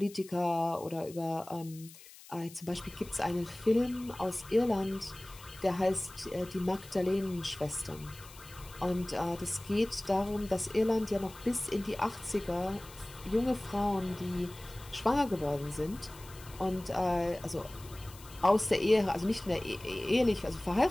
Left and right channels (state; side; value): noise; left; hiss, 19 dB below the sound